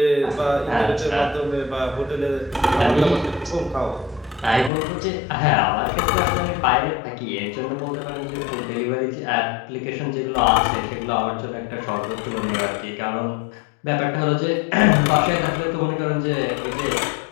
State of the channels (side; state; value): right; drops out; at 4.7 s